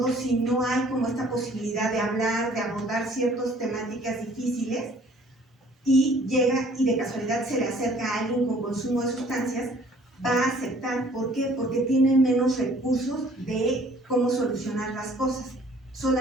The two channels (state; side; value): normal; both; correlation 0.56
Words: si no hay como esta posibilidad de hablar, de abordar ciertas temáticas difíciles, y llega y de casualidad se le acerca a alguien con consumo de sustancias, va a aceptar. ¿Por qué? Porque tiene menos recursos de cómo solucionar las cosas.